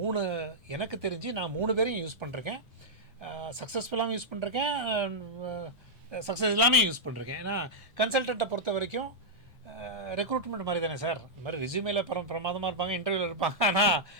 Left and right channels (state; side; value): normal; both; correlation -0.06